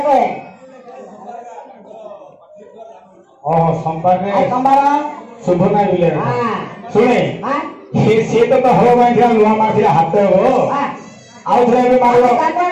ଓହୋ ସୋମବାରରେ আজ সোমবার ଶୁଭ ନାହିଁ ବିଲେ হ্যাঁ ଶୁଣେ হ্যাঁ ସିଏ ତ ହଳ ମାରିଥିଲା ନୂଆ ମାରିଥିଲା ହାତ ହବ হ্যাঁ ଆଉ ଥରେ ଏବେ ମାରିବ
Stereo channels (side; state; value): both; identical; correlation 1.00